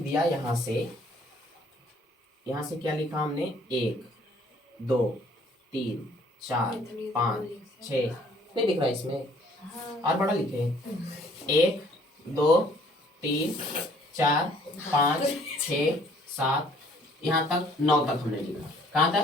यहाँ से क्या लिखा हमने? 1 2 3 4 5 6, नहीं दिख रहा इसमें, और बड़ा लिखे 1 2 3 4 5 6 7, यहाँ तक 9 तक हमने लिखा। कहाँ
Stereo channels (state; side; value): normal; both; correlation 0.59